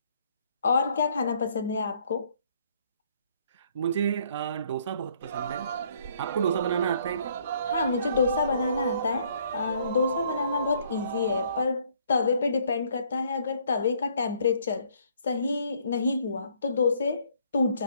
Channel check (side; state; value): both; inverted; correlation -0.64